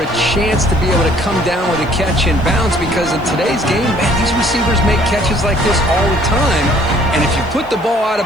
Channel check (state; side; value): noise; right; hiss, 30 dB below the sound